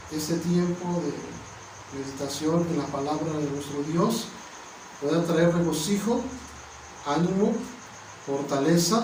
este tiempo de meditación en la palabra de nuestro Dios pueda traer regocijo, ánimo,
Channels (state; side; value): identical; both; correlation 1.00